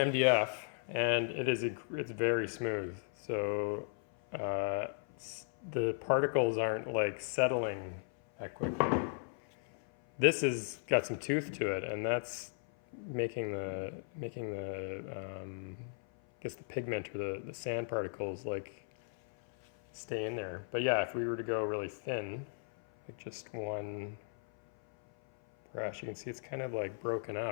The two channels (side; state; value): right; silent; 54 dB below the other